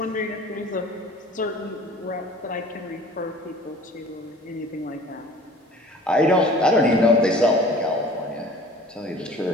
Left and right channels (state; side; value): normal; both; correlation 0.47